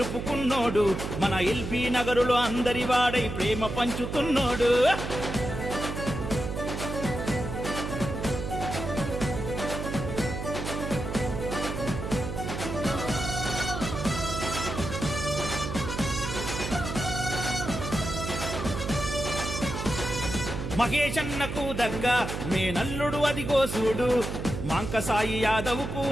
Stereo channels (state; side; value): noise; right; hum, 5 dB below the sound